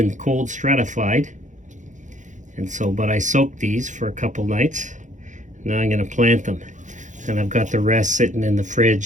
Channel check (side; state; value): left; late; 0.36 ms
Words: cold stratified. And so, but I soaked these for a couple nights. Now I'm going to plant them. And I've got the rest sitting in the